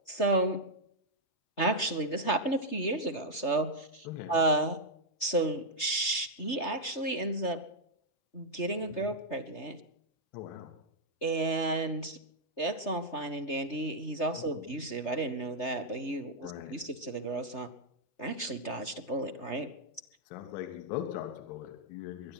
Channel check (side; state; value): right; late; 3.3 ms